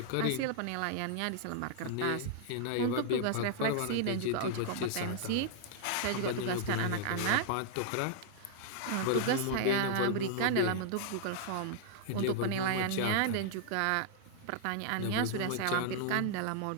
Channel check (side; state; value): both; different; correlation -0.01